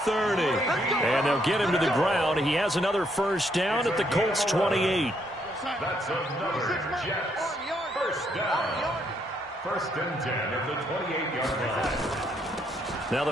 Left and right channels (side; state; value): both; normal; correlation 0.73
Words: And they'll get him to the ground. He has another 1st down at the Colts 28. That's another Jets 1st down. 1st and 10 at the 28-yard line. Now